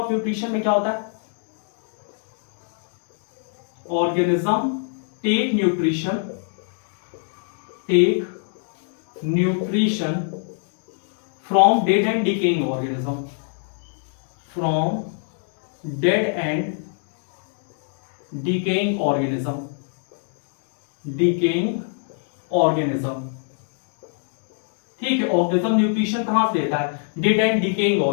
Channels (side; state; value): right; silent; 63 dB below the other